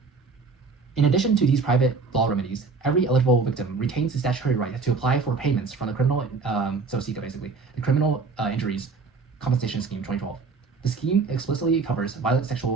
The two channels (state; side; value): quieter; left; 4.5 dB